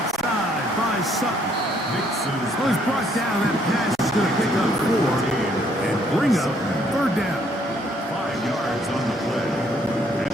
side by Sutton. So he's brought down. That pass is going to pick up 4 and bring up third down. 5 yards on the play. And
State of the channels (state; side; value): normal; both; correlation 0.67